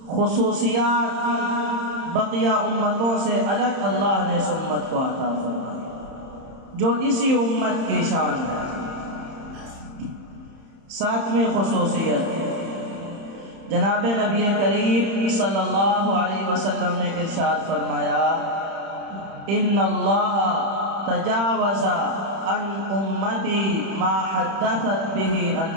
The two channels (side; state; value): left; late; 31 ms